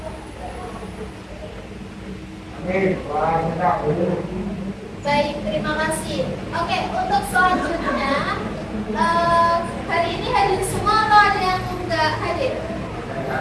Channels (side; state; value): both; identical; correlation 1.00